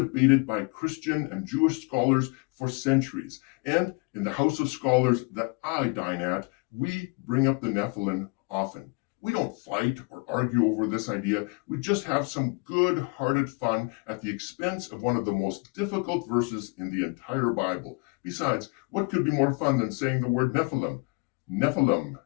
by Christian and Jewish scholars for centuries. And in the house of scholars that I dine at, we bring up the Nephilim often. We don't fight or argue over this idea. We just have some good-hearted fun at the expense of one of the most difficult verses in the entire Bible. Besides, what could be more fun than saying the word Nephilim? Nephilim,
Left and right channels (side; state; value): right; quieter; 31.6 dB